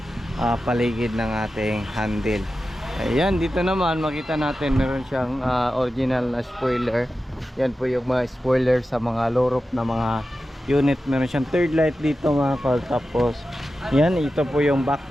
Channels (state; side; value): normal; both; correlation 0.92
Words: paligid ng ating handle. Ayan, dito naman makita natin meron siyang original na spoiler. Yan po yung mga spoiler sa mga low roof na mga unit. Meron siyang third light dito mga kol. Tapos yan, ito po yung